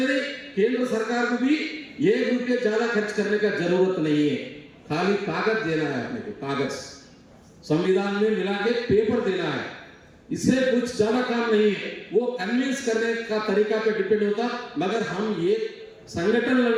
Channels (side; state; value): both; identical; correlation 1.00